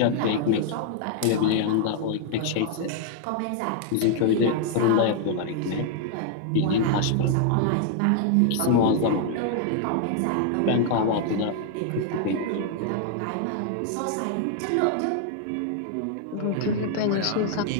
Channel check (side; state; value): both; different; correlation 0.00